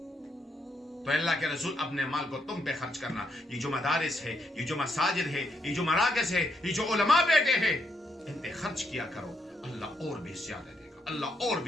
تو اللہ کے رسول اپنے مال کو تم پہ خرچ کرنا. یہ جو مدارس ہے، یہ جو مساجد ہے، یہ جو مراکز ہے، یہ جو علماء بیٹھے ہیں، ان پہ خرچ کیا کرو. اللہ اور بھی زیادہ دے گا، اللہ اور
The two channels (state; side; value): normal; both; correlation 0.76